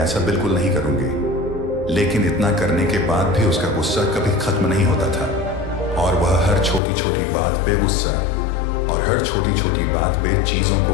बिल्कुल नहीं करूंगी। लेकिन इतना करने के बाद भी उसका गुस्सा कभी खत्म नहीं होता था और वह हर छोटी छोटी बात पे गुस्सा और हर छोटी छोटी बात पे चीजों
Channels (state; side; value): drops out; right; at 6.8 s